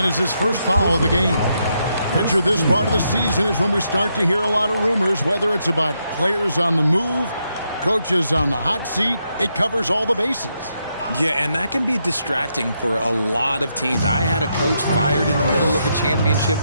is his first foul of the game. Picture this part of the season is when we start to hear a lot of rumors, whether it's about players on the move, coaches on the hot seat. It covers all the bases. Yeah, and that can be distracting for a lot of teams. I had a coach fired in the middle of a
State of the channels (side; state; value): both; inverted; correlation -0.80